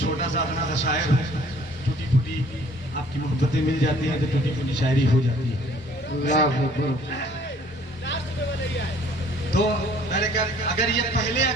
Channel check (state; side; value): normal; both; correlation 0.56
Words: छोटा सा अपना सा शायर हूँ, टूटी फूटी आपकी मोहब्बतें मिल जाती हैं तो टूटी फूटी शायरी हो जाती है। तो मैंने कहा अगर ये पहले,